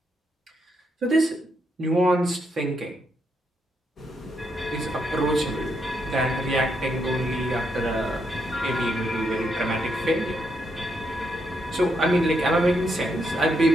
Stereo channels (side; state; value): both; normal; correlation 0.79